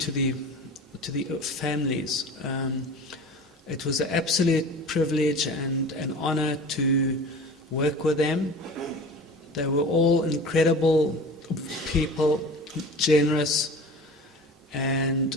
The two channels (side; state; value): both; normal; correlation 0.38